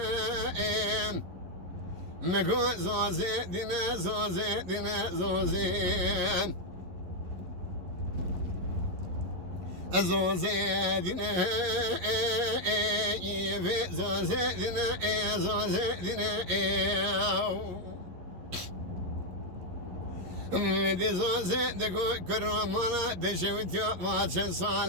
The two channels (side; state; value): left; late; 11 ms